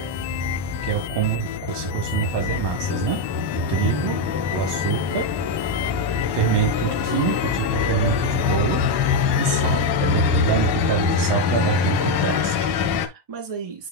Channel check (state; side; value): late; left; 1.2 ms